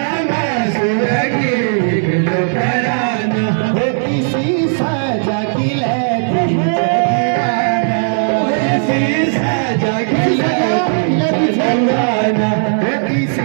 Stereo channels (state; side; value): silent; left; digital silence